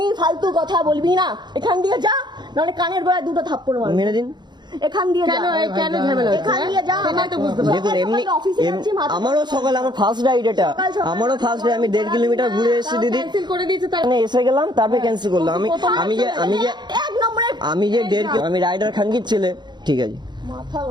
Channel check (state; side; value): late; left; 0.21 ms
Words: ফালতু কথা বলবি না, এখান দিয়ে যা, নাহলে কানের গোড়ায় দুটো থাপ্পড় মারবো। মেরে দিন। এখান দিয়ে যা, কেন ঝামেলা হচ্ছে? এখান দিয়ে যা। দেখুন এমনি আমারও সকালে আমার ফার্স্ট রাইড এটা, আমারও ফার্স্ট রাইড। আমি 1.5 কিলোমিটার ঘুরে এসেছি দিদি, ক্যান্সেল করে দিয়েছে তার মানে এসে গেলাম তারপরে ক্যান্সেল করলাম। এক নম্বরে আমি যে 1.5 আমি রাইডার খানকির ছেলে, ঠিক আছে মাথা